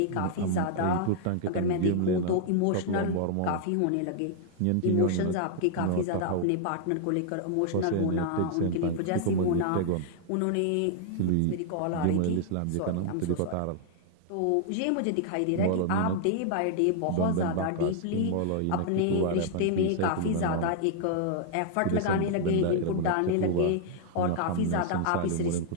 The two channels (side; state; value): both; different; correlation -0.01